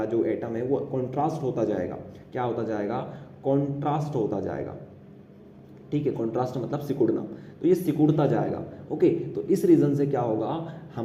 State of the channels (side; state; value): both; identical; correlation 1.00